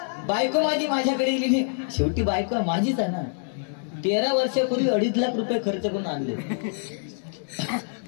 बायको माझी माझ्याकडे गेली नाही. शेवटी बायको माझीच आहे ना. 13 वर्षापूर्वी 2.5 लाख रुपये खर्च करून आणले.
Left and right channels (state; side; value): silent; right; digital silence